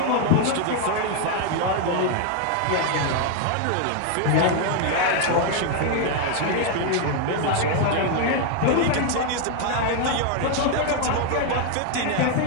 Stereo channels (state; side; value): different; both; correlation 0.01